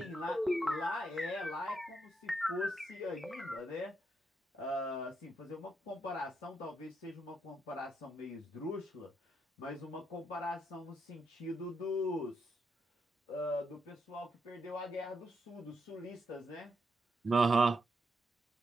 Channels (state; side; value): normal; both; correlation 0.80